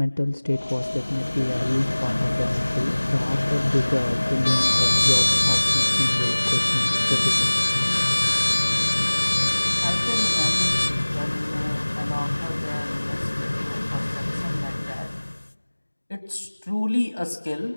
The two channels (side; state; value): both; inverted; correlation -1.00